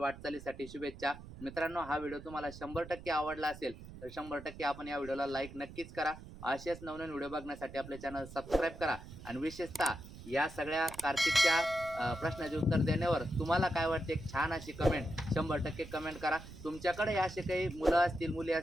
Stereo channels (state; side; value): noise; right; rumble, 15 dB below the sound